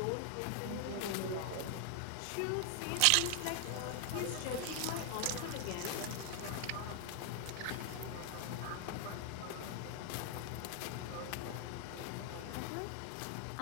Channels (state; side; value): different; both; correlation 0.00